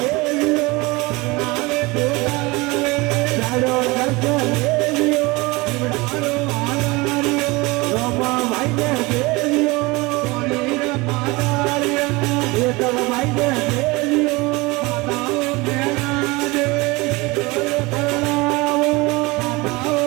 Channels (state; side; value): quieter; left; 23.6 dB